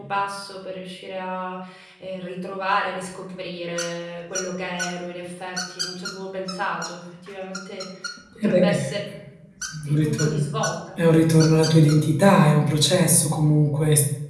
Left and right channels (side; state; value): both; identical; correlation 1.00